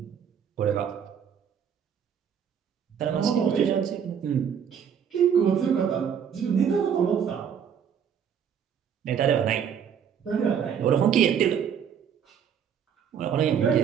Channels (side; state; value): left; quieter; 8.0 dB